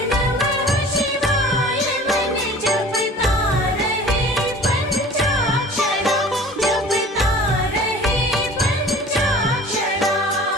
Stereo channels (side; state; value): both; normal; correlation 0.44